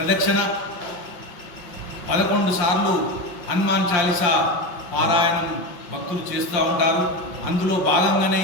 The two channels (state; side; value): late; right; 5.7 ms